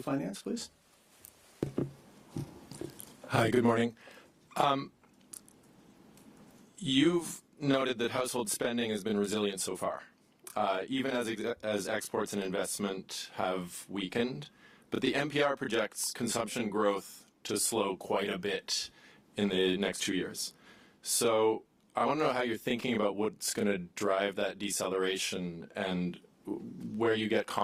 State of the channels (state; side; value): identical; both; correlation 1.00